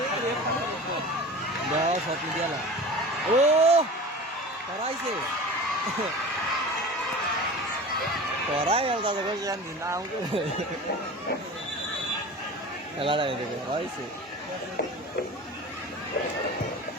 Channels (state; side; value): normal; both; correlation 0.35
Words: Dah, satu dia lah. Karaise. Karai yang tak ada yang di naung tu. Kalau ada itu, karaise.